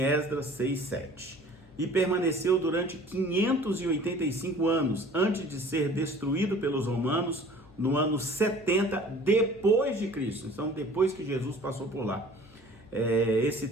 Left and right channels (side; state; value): left; noise; hum, 25 dB below the sound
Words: Esdras 6, 7. E permaneceu durante 585 anos, antes de ser destruído pelos romanos, no ano 70 depois de Cristo. Então, depois que Jesus passou por lá. Esse